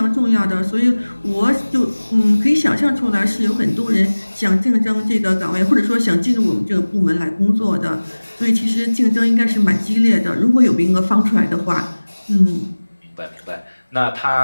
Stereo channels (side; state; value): both; inverted; correlation -1.00